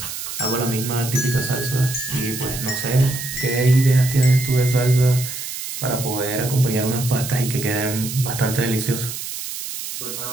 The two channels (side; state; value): right; noise; hiss, 7 dB below the sound